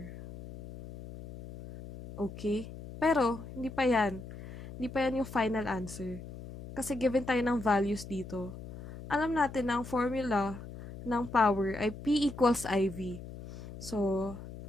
Okay? Pero, hindi pa yan. Hindi pa yan yung final answer. Kasi given tayo ng values dito, alam natin na ang formula ng power ay P equals IV. So,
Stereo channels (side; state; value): left; noise; hum, 13 dB below the sound